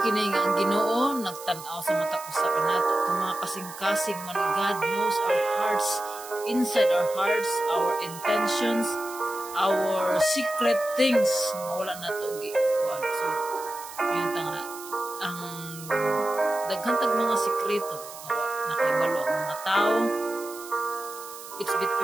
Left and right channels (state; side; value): noise; right; hiss, 14 dB below the sound